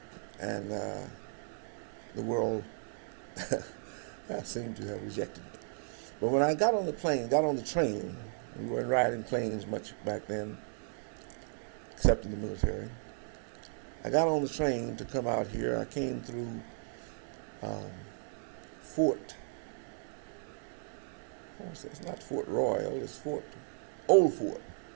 And the world seemed to have rejected me. But when I got on the train, we weren't riding planes much back then, except in the military. I got on the train to come out here. I came through it's not Fort Royal, it's Old Fort,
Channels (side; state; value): left; silent; digital silence